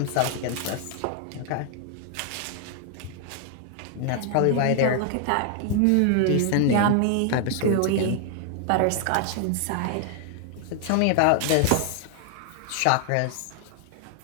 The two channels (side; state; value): both; different; correlation 0.00